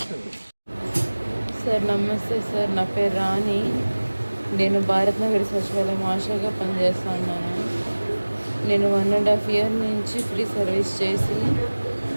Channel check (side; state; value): both; inverted; correlation -1.00